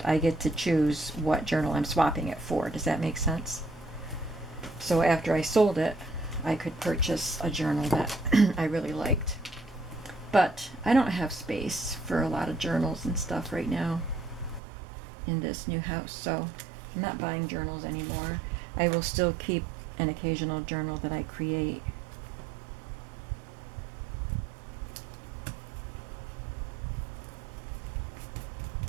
I get to choose what journal I'm swapping it for. Does that make sense? So after I sold it, I could purchase a journal that I really liked. But I don't have space for a lot of journals and stuff right now in this new house, so I'm not buying journals anymore. I will still keep an occasional journal that I create.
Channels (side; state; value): left; drops out; at 14.6 s